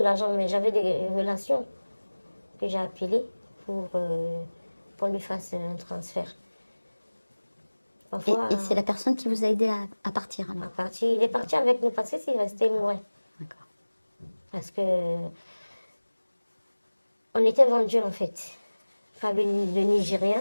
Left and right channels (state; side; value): inverted; both; correlation -1.00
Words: mais j'avais des relations que j'ai appelées pour qu'on lui fasse un transfert. Et c'est la personne qui vous a aidé à partir alors? Il est parti avec nous parce que s'il restait, il mourrait. D'accord. Parce que on était vendus en fait par le